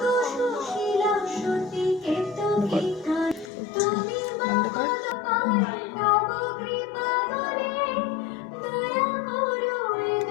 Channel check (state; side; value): drops out; right; at 3.5 s